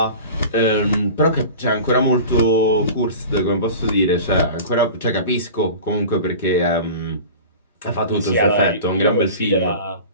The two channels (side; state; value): both; inverted; correlation -0.36